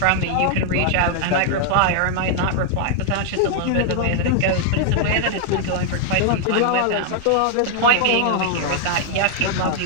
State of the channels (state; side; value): different; both; correlation 0.00